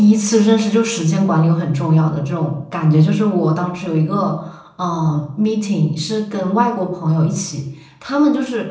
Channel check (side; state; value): both; identical; correlation 1.00